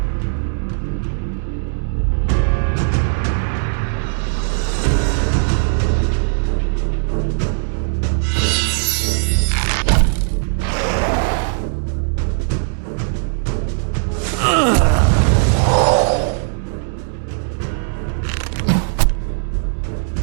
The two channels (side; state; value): left; silent; digital silence